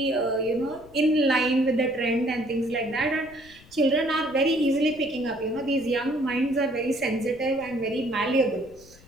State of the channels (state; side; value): noise; left; rumble, 24 dB below the sound